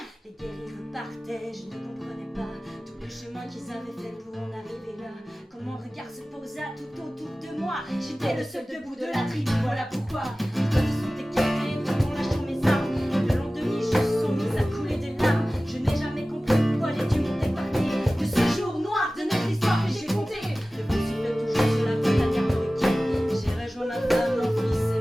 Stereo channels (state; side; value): normal; both; correlation 0.97